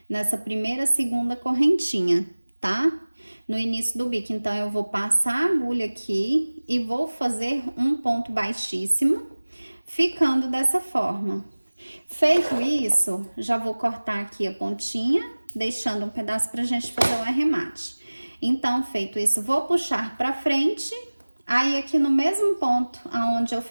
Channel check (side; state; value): both; inverted; correlation -1.00